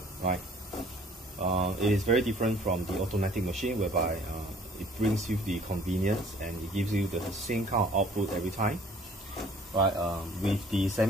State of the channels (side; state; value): both; normal; correlation 0.55